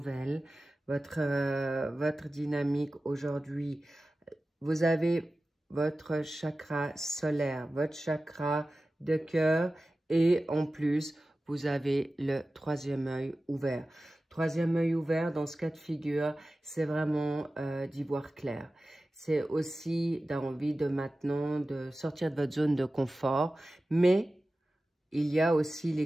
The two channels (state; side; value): normal; both; correlation 0.95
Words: Votre dynamique aujourd'hui, vous avez votre chakra solaire, votre chakra de cœur et en plus, vous avez le troisième œil ouvert. Troisième œil ouvert, dans ce cas de figure, c'est vraiment d'y voir clair. C'est aussi d'envie de maintenant de sortir de votre zone de confort, mais il y a aussi